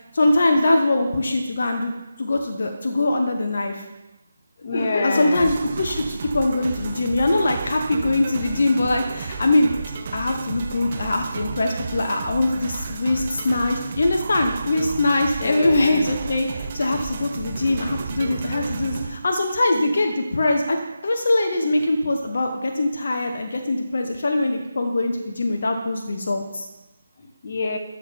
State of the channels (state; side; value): inverted; both; correlation -0.91